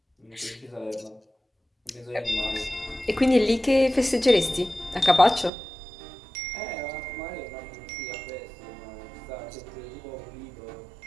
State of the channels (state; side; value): drops out; left; at 5.5 s